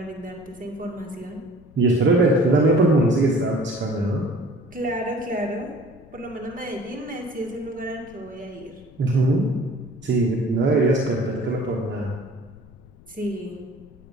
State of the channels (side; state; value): left; noise; rumble, 23 dB below the sound